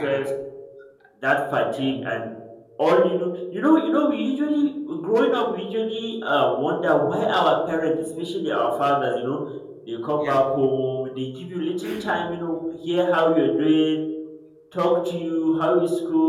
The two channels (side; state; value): both; identical; correlation 1.00